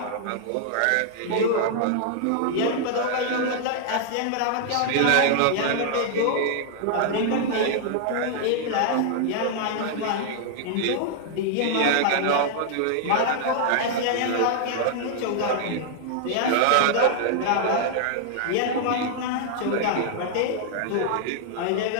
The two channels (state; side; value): different; both; correlation -0.01